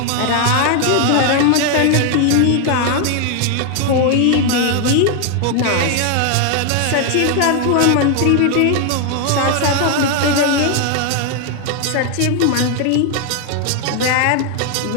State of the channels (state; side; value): different; both; correlation 0.00